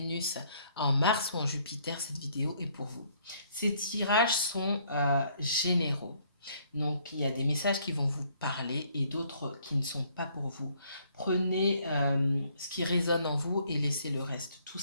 en Mars ou en Jupiter, cette vidéo est pour vous. Ces tirages sont généraux. Donc, il y a des messages qui vont vous parler et d'autres qui ne sont pas pour vous. Prenez ce qui résonne en vous et laissez le reste, tout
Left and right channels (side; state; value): both; inverted; correlation -0.65